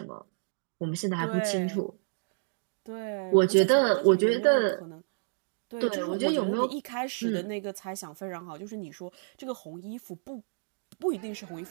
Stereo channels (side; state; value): left; silent; digital silence